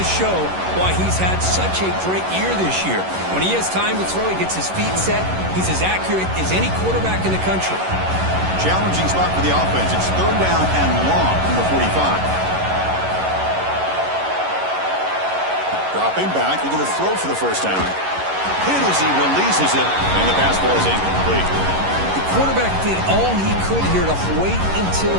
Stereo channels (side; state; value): left; late; 11 ms